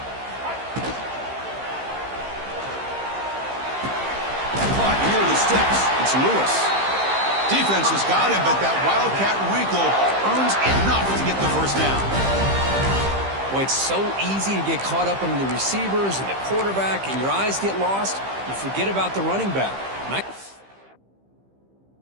Caught near the sticks. It's Lewis. Defense has got him, but that Wildcat wrinkle earns enough to get the first down. Well, it's so easy to get caught up in the receivers and the quarterback, and your eyes get lost. You forget about the running back.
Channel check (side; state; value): left; late; 15 ms